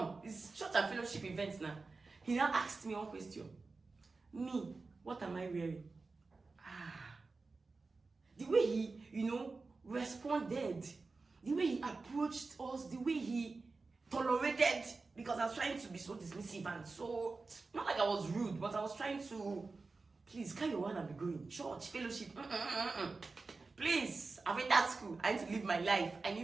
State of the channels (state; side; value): quieter; left; 3.9 dB